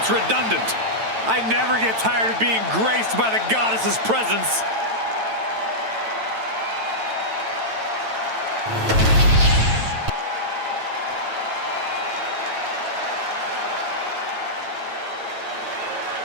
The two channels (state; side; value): late; left; 9.0 ms